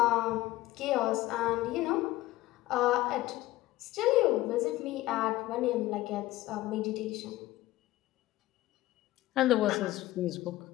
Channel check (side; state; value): right; quieter; 17.0 dB